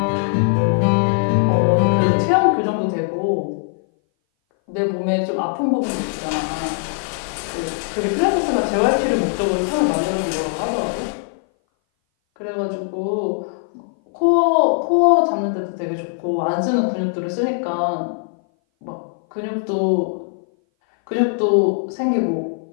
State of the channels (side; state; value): right; silent; 59 dB below the other